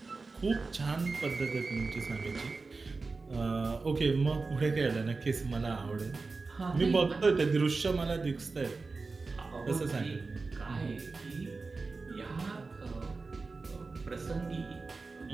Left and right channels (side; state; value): left; quieter; 4.0 dB